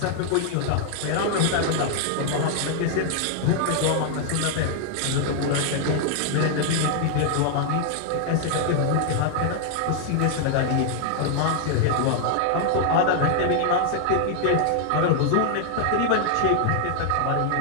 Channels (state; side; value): different; both; correlation 0.00